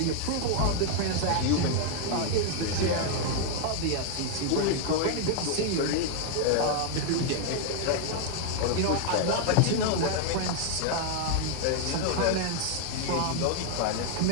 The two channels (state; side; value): different; both; correlation 0.00